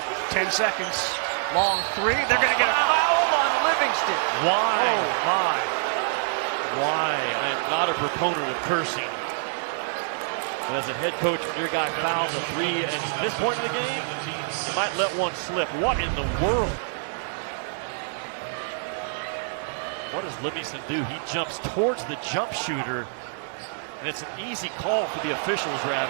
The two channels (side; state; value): left; silent; 61 dB below the other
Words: 10 seconds. Long three. They're going to get a foul on Livingston. Why? Oh, my. Why? I am not a proponent of cursing. But as a head coach, when your guy fouls a 3 at this point in the game, you might let one slip. What in the world? What does Livingston do? He jumps towards the jump shooter, and it's an easy call for the officials,